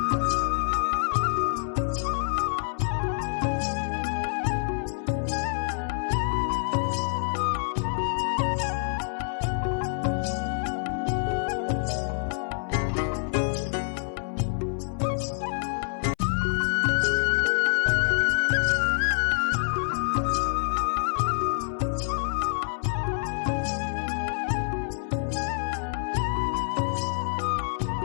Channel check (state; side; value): silent; right; 58 dB below the other